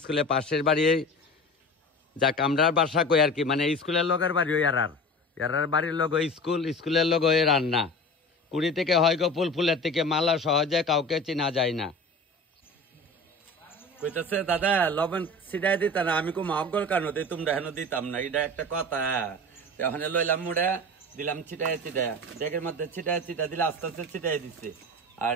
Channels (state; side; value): normal; both; correlation 0.34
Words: স্কুলের পাশের বাড়ি। যাক, আমরা বাসা কই আর কি, মানে স্কুলের লগের বাড়ি ওই এরার বাড়ির লগ স্কুল, স্কুলের লগ ওই রান্না। কুড়ি থেকে হয় গো ফুলের থেকে মালা, সহজে কাউকে চিনা যায় না। কইতেছে দাদা লবণ ছিটাই দিতা না? আমি কো মগল কেন দিই, তোমরা হেন দিতাম না, এটা একটা কথা। ওখানে লইলাম মুড়া, দিলাম ছিটাই ডেকের মধ্যে ছিটাই দিলে আস্তে আস্তে ছিটাই দিচ্ছে। আর